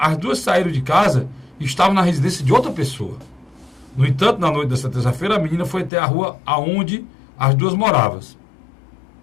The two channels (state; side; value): drops out; right; at 5.9 s